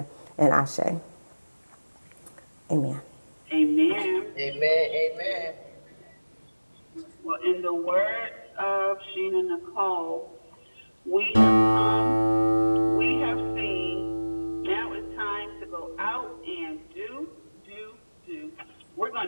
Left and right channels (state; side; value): inverted; both; correlation -1.00